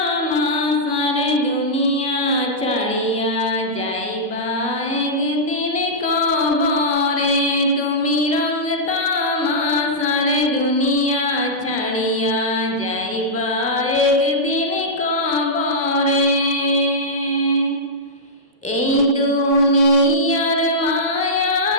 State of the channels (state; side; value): normal; both; correlation -0.12